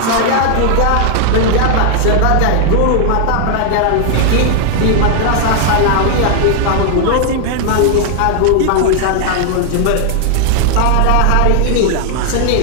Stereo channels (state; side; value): different; both; correlation 0.00